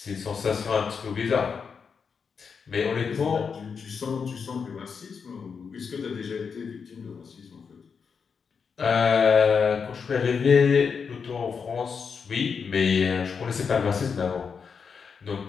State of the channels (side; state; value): right; quieter; 5.9 dB